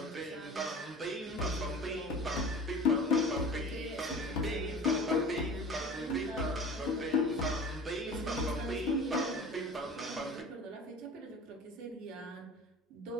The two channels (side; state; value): both; normal; correlation 0.40